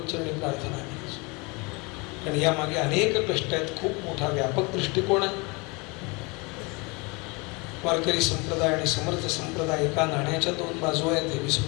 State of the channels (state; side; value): quieter; right; 28.1 dB